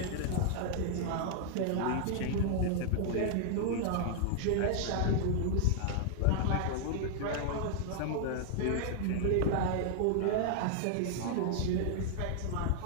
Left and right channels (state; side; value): different; both; correlation -0.01